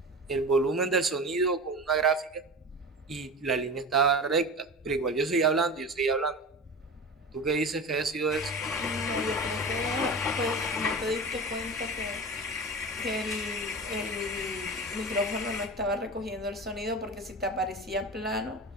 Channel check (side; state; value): both; normal; correlation 0.31